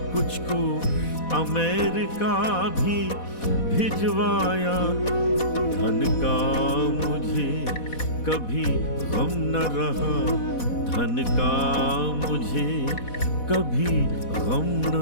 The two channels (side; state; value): right; late; 4.1 ms